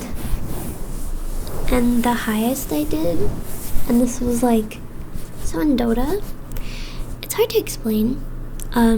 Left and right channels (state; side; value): identical; both; correlation 1.00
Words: and the highest I did, and this was so in Dota, it's hard to explain.